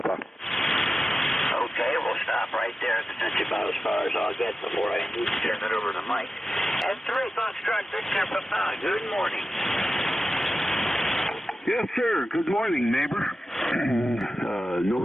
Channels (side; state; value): both; normal; correlation 0.93